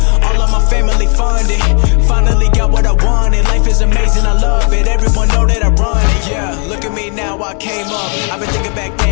All of my family funded. Finally got what I wanted. Life is amazing, I love it. Everyone know that I run it. Yeah, look at me now, I came up. I've been thinking back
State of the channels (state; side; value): quieter; right; 38.6 dB